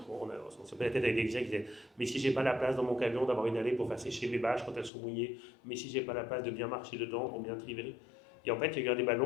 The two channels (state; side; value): drops out; right; at 4.9 s